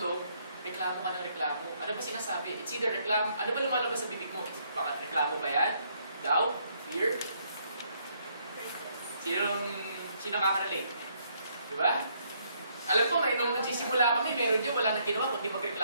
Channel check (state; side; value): inverted; both; correlation -0.70